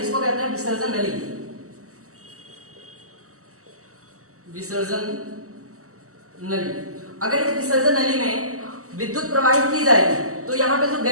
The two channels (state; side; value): late; left; 0.65 ms